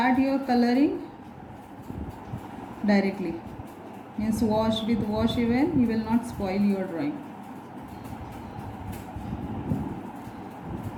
your coloring directly. Means wash even, you will not spoil your drawing.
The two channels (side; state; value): both; identical; correlation 1.00